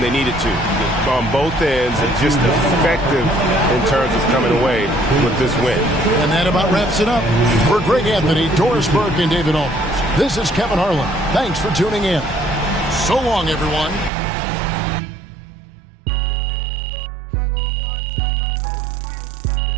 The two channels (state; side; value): drops out; left; at 14.1 s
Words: they needed to on both ends, and just effective in terms of coming away with this win. And that about wraps it up. For Greg Anthony, Doris Burke, and David Olmers, this is Kevin Harlan. Thanks for tuning in. So long, everyone.